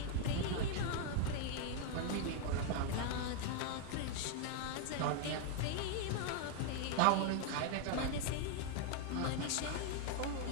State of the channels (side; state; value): both; different; correlation 0.00